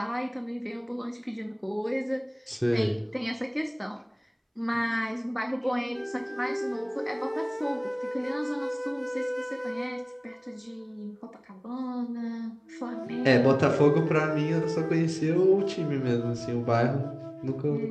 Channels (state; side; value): identical; both; correlation 1.00